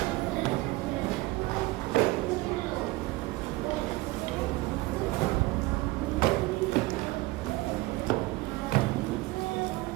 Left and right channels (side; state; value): left; quieter; 20.9 dB